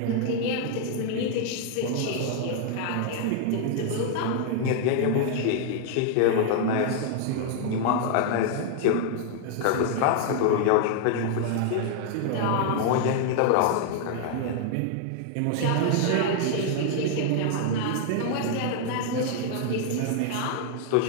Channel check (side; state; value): both; different; correlation 0.00